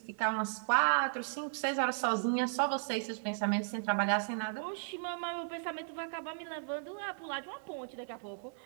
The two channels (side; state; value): left; silent; digital silence